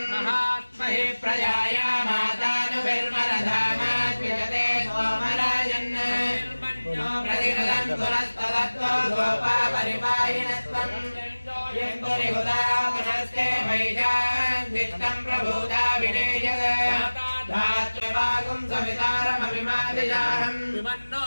महात्महि प्रजाया मातानुभिर्मरधामाद्विजते सोमराजन् प्रतिगदन्तुरस्तदत्तो गोपा परिपाहिनस्त्वं यन्तुरिहुदा पुनस्ते वैशान् दिष्टं प्रभूता विनेयद धात्रिवागुं सवितारमभिमादिजाहं विमन्नो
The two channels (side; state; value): both; inverted; correlation -1.00